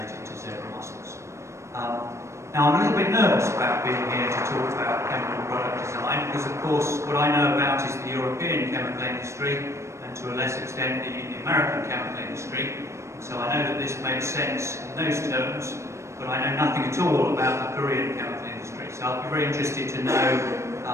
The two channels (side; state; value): left; late; 0.14 ms